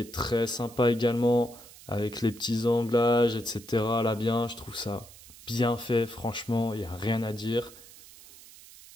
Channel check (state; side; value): noise; right; hiss, 20 dB below the sound